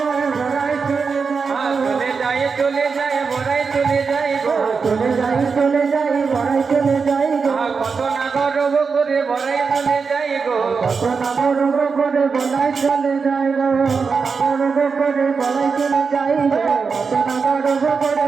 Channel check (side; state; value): left; quieter; 5.2 dB